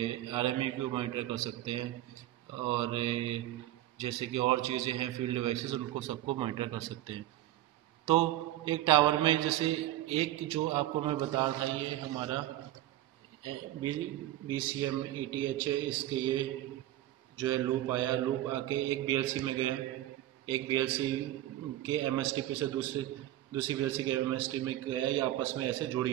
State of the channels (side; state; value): left; quieter; 14.3 dB